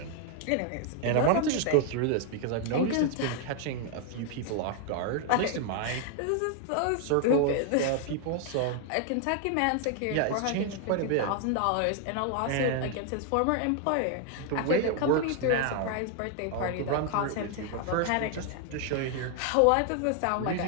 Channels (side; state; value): both; different; correlation 0.00